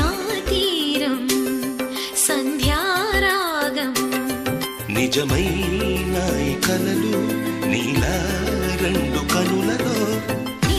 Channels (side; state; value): both; identical; correlation 1.00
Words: తీరం సంధ్యారాగం నిజమైన ఈ కలలు నీలా రెండు కనులలో